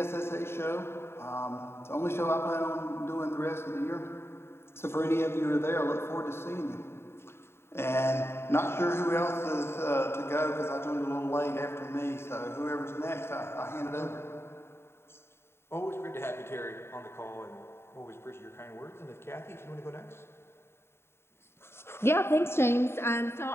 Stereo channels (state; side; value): late; right; 0.12 ms